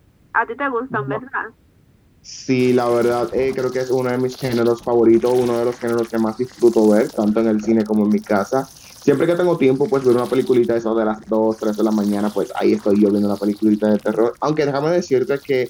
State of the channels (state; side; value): identical; both; correlation 1.00